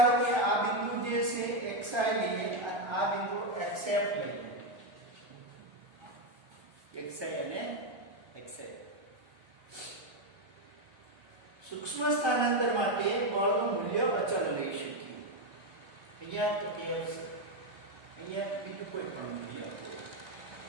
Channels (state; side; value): late; left; 1.3 ms